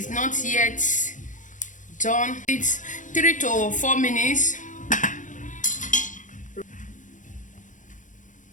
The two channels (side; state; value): right; late; 0.37 ms